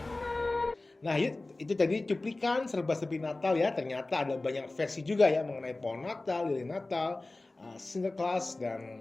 Nah, itu tadi cuplikan serba-serbi Natal ya. Ternyata ada banyak versi juga ya mengenai pohon Natal, lilin Natal, Santa Claus,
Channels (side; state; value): right; quieter; 3.0 dB